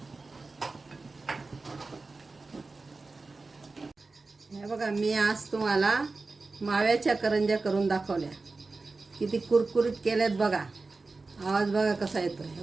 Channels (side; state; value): left; quieter; 3.7 dB